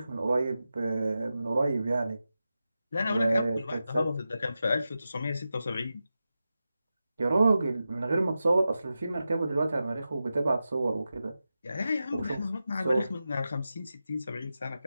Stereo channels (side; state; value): both; inverted; correlation -0.92